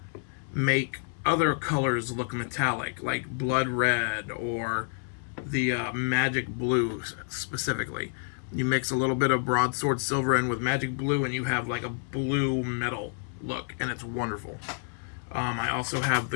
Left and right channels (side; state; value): right; silent; 59 dB below the other